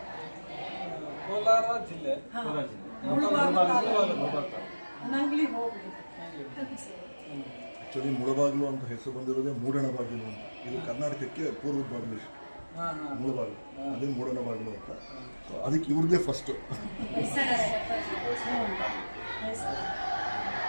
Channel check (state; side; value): inverted; both; correlation -1.00